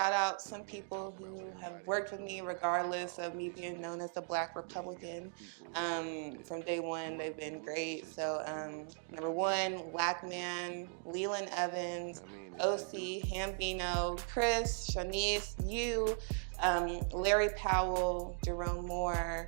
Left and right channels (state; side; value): silent; left; 52 dB below the other